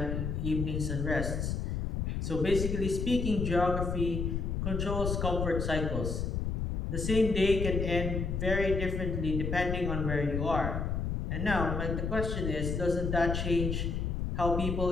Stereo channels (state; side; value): noise; left; rumble, 1 dB below the sound